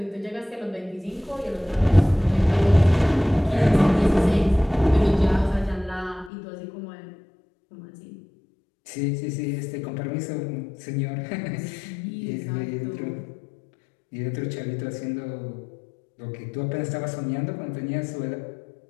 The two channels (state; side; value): drops out; right; at 6.3 s